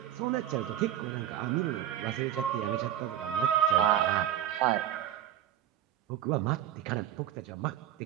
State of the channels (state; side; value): quieter; left; 11.1 dB